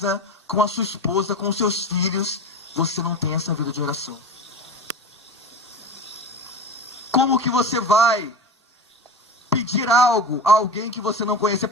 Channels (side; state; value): both; normal; correlation 0.29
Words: com a sua esposa, com os seus filhos, você não tem essa vida de oração. Como que você vai pedir algo a alguém que você não conhece? Você